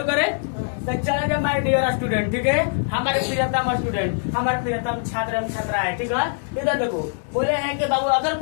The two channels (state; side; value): silent; right; digital silence